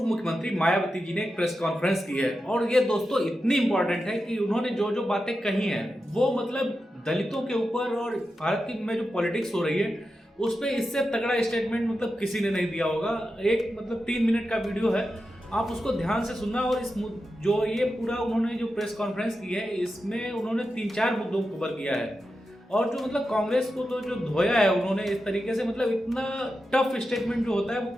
मुख्यमंत्री मायावती जी ने एक प्रेस कॉन्फ्रेंस की है और ये दोस्तों इतनी इंपॉर्टेंट है कि उन्होंने जो जो बातें कही हैं वो मतलब दलितों के ऊपर और भारत की में जो पॉलिटिक्स हो रही है उस पर इससे तगड़ा स्टेटमेंट मतलब किसी ने नहीं दिया होगा। एक मतलब 3 मिनट का वीडियो है, आप उसको ध्यान से सुनना। और इस जो ये पूरा उन्होंने जो प्रेस कॉन्फ्रेंस की है इसमें उन्होंने 3-4 मुद्दों को कवर किया है और जो मतलब कांग्रेस को तो जो धोया है उन्होंने इस तरीके से, मतलब इतना टफ स्टेटमेंट जो होता है वो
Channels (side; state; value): both; normal; correlation 0.90